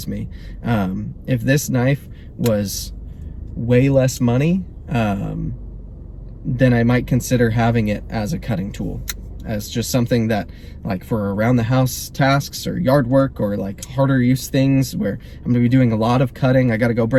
me. If this knife was way less money, then I might consider having it as a cutting tool, as just something that, like, for around the house tasks or yard work or like harder use things where I'm gonna be doing a lot of cutting, I gotta go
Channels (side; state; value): both; identical; correlation 1.00